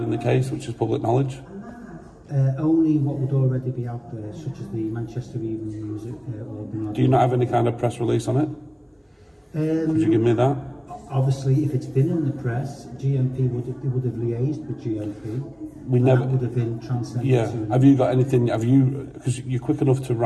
the case, which is public knowledge. Only what would already be out there, such as the Manchester Evening News or... Do you not have any kind of press release on it? Could you give me that? Obviously, if it's been in the press, GMP would have liaised with GMP. We never that would have been transmitted to... Have you got anything? Because you're quick enough to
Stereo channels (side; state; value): both; identical; correlation 1.00